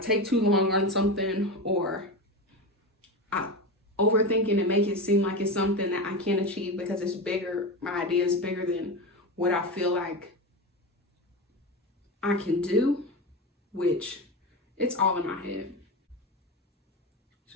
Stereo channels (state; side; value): normal; both; correlation 0.21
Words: too long on something, or I overthink it and make it seem like it's something that I can't achieve because it's bigger. My idea is bigger than what I feel like I can do, which it's all in my head. It's